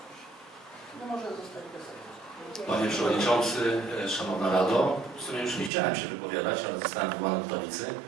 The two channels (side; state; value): left; drops out; at 5.7 s